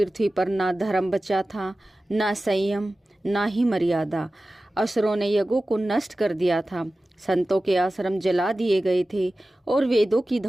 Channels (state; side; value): normal; both; correlation 0.95